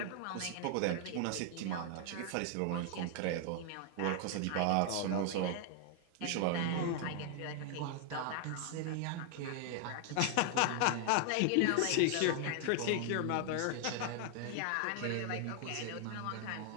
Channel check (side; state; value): both; different; correlation 0.00